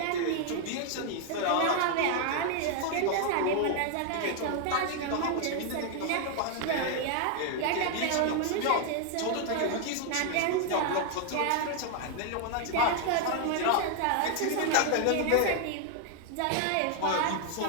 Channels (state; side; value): different; both; correlation 0.00